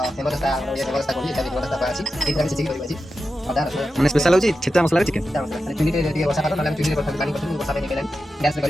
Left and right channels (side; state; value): both; normal; correlation 0.91